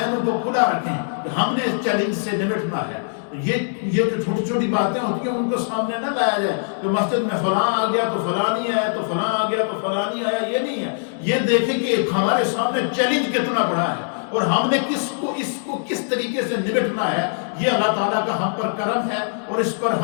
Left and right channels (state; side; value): silent; right; digital silence